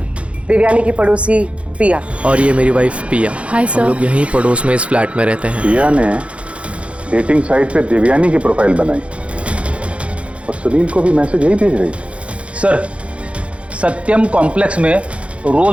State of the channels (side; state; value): left; late; 0.061 ms